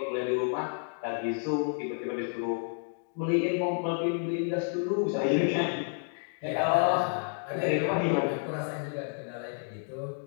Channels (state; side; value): silent; right; 56 dB below the other